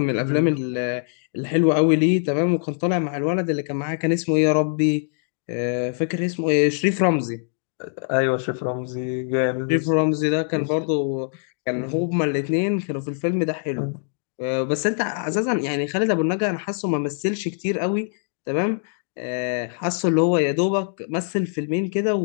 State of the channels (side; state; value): right; silent; digital silence